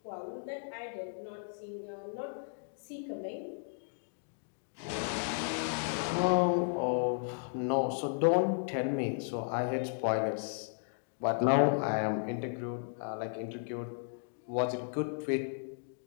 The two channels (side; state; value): right; silent; digital silence